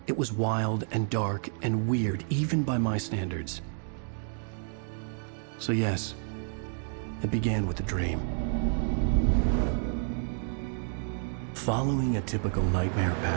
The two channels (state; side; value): silent; left; 58 dB below the other